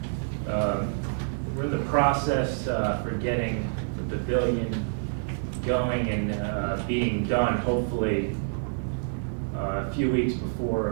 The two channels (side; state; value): left; silent; digital silence